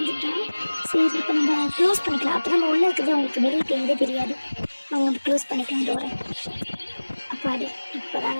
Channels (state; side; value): inverted; both; correlation -1.00